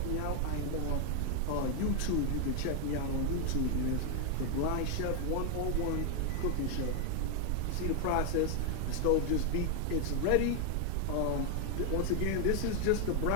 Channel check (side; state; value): both; different; correlation 0.01